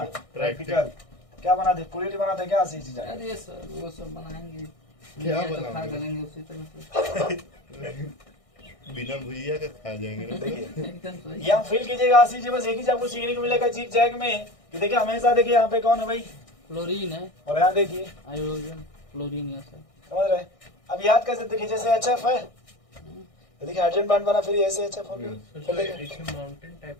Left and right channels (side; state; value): right; late; 1.6 ms